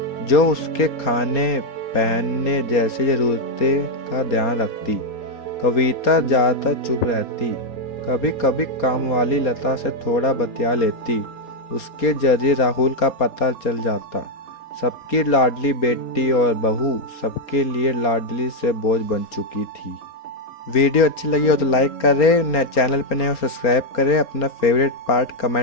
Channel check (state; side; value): late; right; 4.3 ms